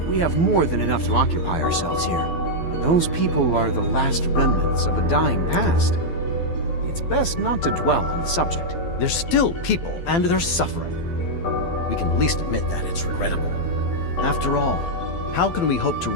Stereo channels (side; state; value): right; late; 12 ms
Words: We have more than enough to occupy ourselves here. But those people are the last remnants of a dying past. It's best not to dwell on the subject. They're still people, and they're suffering. We can at least admit that it's regrettable. After all, how can we hope to